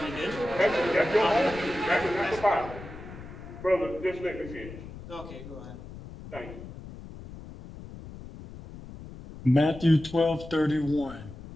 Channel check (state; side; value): noise; left; rumble, 14 dB below the sound